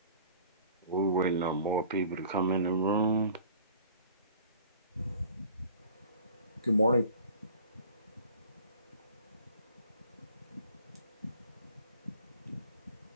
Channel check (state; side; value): inverted; both; correlation -0.47